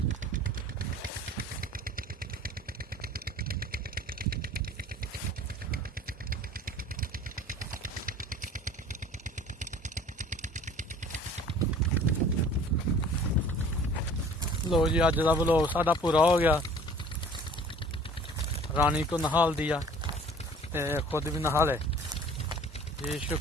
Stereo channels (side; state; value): both; normal; correlation 0.48